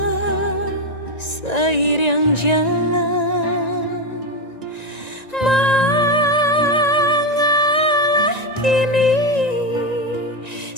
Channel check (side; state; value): right; late; 1.9 ms